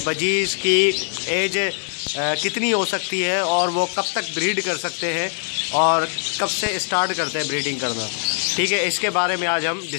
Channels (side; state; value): right; silent; 64 dB below the other